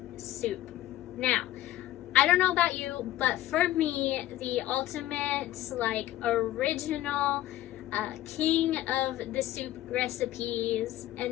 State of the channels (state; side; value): quieter; right; 14.5 dB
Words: soup. Now, I don't know about you, but for me, the ultimate, original king of the soup recipes